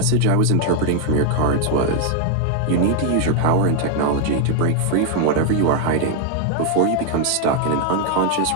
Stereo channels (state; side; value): different; both; correlation 0.00